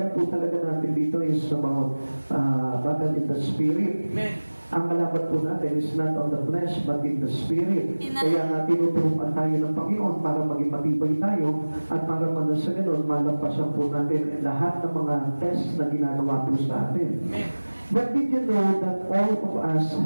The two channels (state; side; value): inverted; both; correlation -1.00